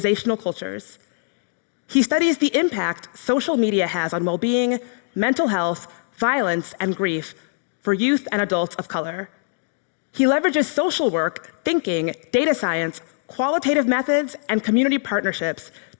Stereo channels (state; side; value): silent; right; 63 dB below the other